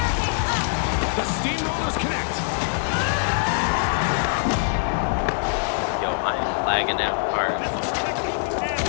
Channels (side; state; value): right; silent; digital silence